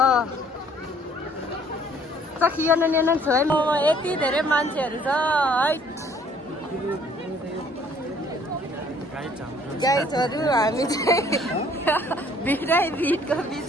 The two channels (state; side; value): normal; both; correlation 0.59